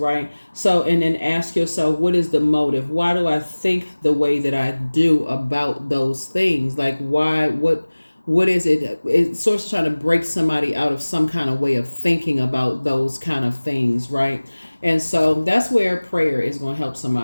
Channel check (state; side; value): inverted; both; correlation -1.00